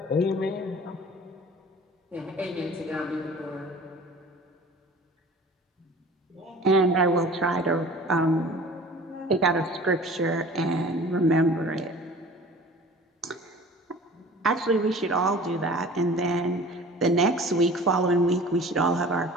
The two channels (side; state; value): both; normal; correlation 0.44